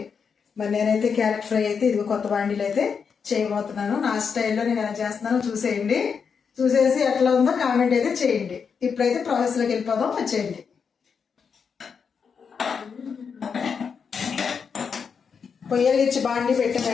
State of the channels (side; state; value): right; quieter; 6.2 dB